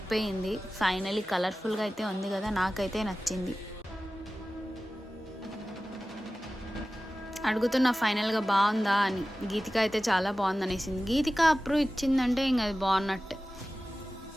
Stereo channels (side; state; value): both; normal; correlation 0.96